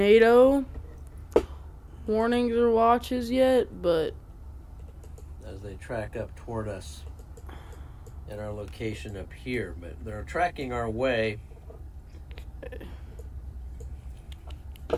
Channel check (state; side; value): identical; both; correlation 1.00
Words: warnings or watches yet, but As they track up toward us in our location up here, but they're tracking our way